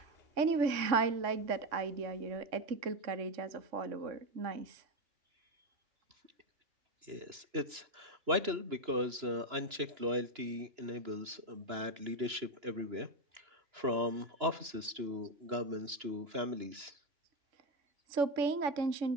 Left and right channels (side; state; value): left; late; 2.9 ms